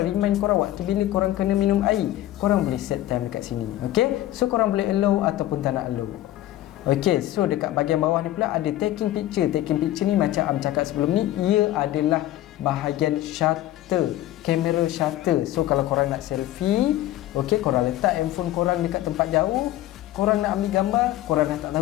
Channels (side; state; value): right; quieter; 14.4 dB